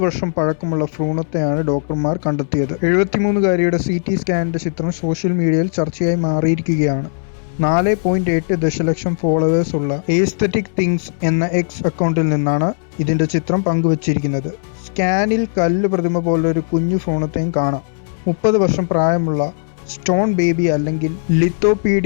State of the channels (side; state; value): right; silent; 66 dB below the other